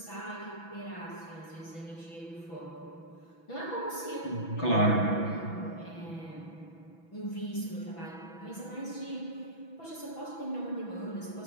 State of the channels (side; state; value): right; late; 6.1 ms